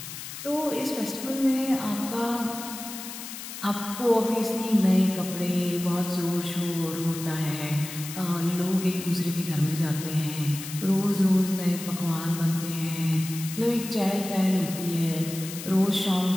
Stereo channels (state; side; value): noise; left; hiss, 10 dB below the sound